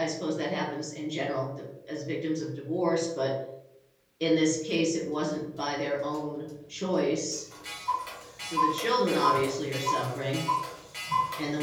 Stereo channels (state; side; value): identical; both; correlation 1.00